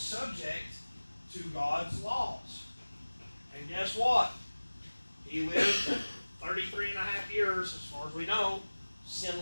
to God's laws. And guess what? He lived 33 and a half years, as far as we know,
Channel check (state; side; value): inverted; both; correlation -1.00